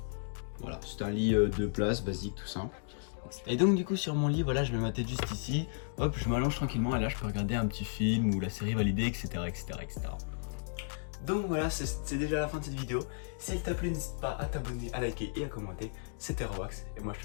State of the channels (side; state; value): right; silent; digital silence